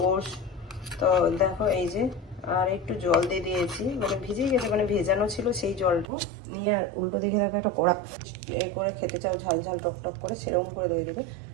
ওটস। তো দেখো এই যে, আর একটু জল দিয়ে দিয়েছি, মানে ভিজে গেছে, মানে ভেজানো ছিল সেই জলটা নিয়ে। আর উল্টো দিকে দেখো একটা কড়া এ করে খেতে চাও ঝাল ঝাল টক টক করে, সেরকম করে দই দেবে।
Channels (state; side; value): drops out; left; at 6.1 s